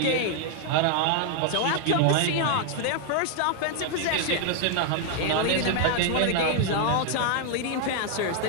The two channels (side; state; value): both; different; correlation 0.00